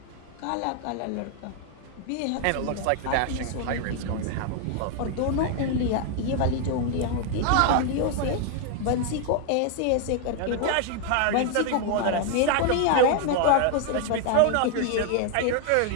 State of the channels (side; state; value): both; different; correlation 0.00